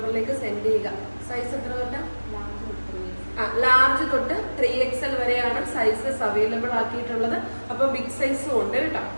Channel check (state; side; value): inverted; both; correlation -1.00